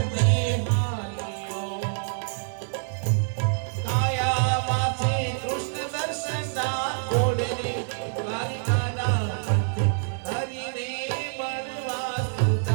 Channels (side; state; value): left; silent; 55 dB below the other